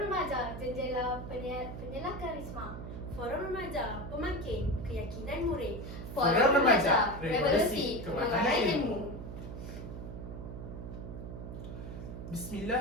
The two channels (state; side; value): noise; right; hum, 9 dB below the sound